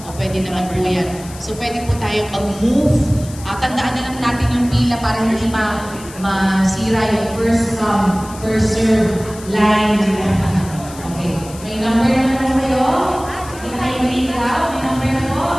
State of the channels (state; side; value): noise; left; hiss, 17 dB below the sound